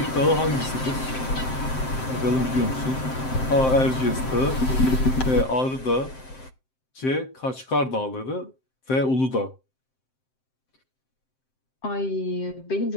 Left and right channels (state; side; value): late; right; 7.7 ms